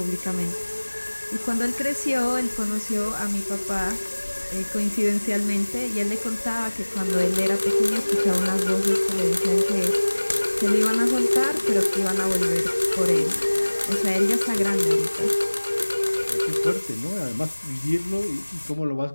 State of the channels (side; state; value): both; inverted; correlation -1.00